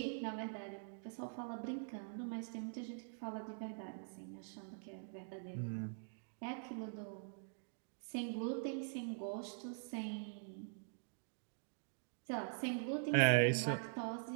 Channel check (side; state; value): left; silent; digital silence